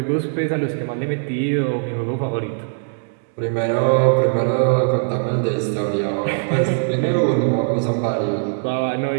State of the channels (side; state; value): left; silent; digital silence